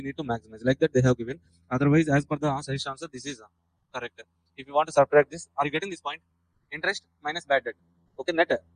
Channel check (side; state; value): both; identical; correlation 1.00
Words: need to maximize. Like that they have given. Otherwise, as per the suggestion answer, this is correct. If you want to subtract this, are you getting this point? Interest minus bad debt. Okay, net